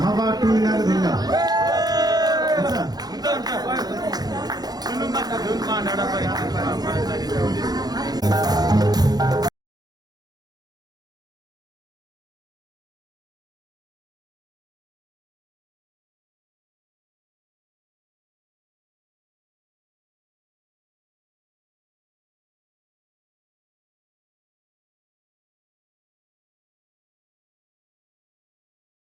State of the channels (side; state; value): left; late; 0.19 ms